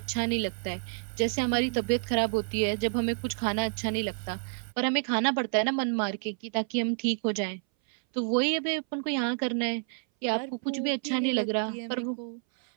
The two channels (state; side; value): silent; left; 58 dB below the other